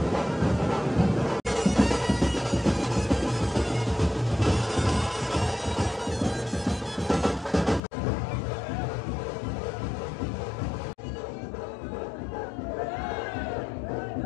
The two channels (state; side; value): drops out; right; at 7.8 s